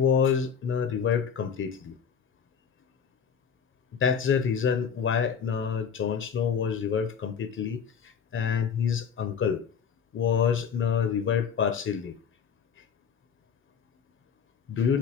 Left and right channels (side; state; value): right; quieter; 7.0 dB